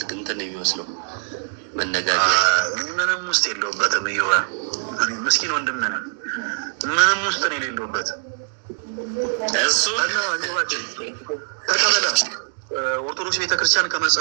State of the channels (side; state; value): left; silent; digital silence